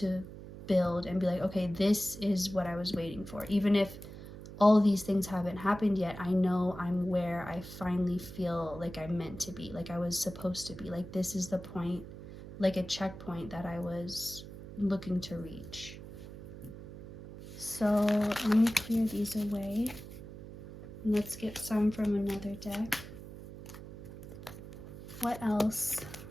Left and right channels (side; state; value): right; noise; hum, 13 dB below the sound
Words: build and be like, okay, this is what I was waiting for. Even if all of these things haven't happened yet, I know I'm where I finally feel like I'm meant to be, like I was supposed to be. Like this is the point, like a checkpoint that I was looking to reach. So let me clear these away. Let's get some from another deck. What else